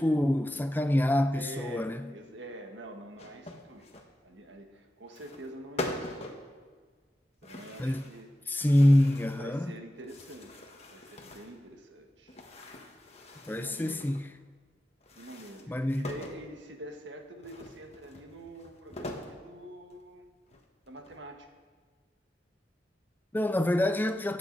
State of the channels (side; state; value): both; normal; correlation 0.91